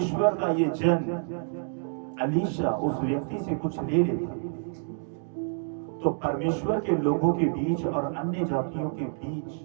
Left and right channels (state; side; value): silent; left; digital silence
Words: का ये जन अलीशा उस व्यक्ति से कुछ ले लेता तो परमेश्वर के लोगों के बीच और अन्य जातियों के बीच,